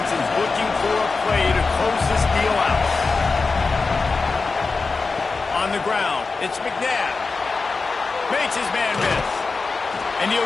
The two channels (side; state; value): right; quieter; 4.2 dB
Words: is looking for a play to close this deal out. On the ground, it's McNabb. Makes his man miss. And